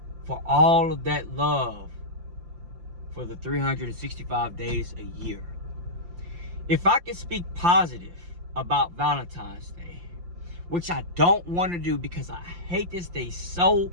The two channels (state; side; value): late; left; 5.7 ms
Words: for all of that love for the 365 days a year. If I could speak positive about Valentine's Day, which I don't want to do because I hate this day so